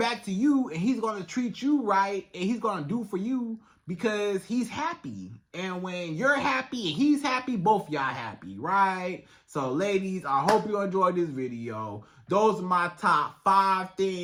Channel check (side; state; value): both; identical; correlation 1.00